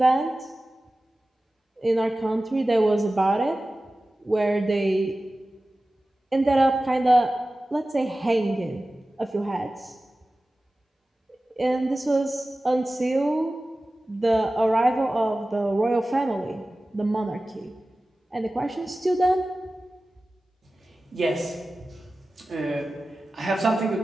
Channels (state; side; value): normal; both; correlation 0.96